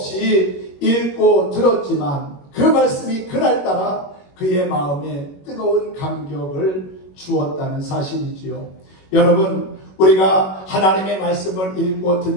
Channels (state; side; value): late; right; 21 ms